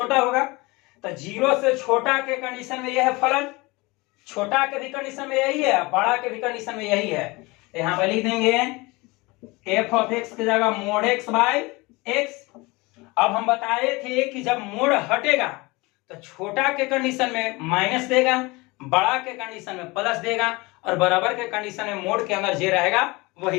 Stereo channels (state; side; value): quieter; right; 23.9 dB